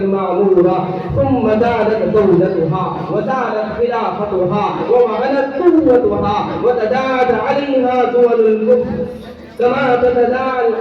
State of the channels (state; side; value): identical; both; correlation 1.00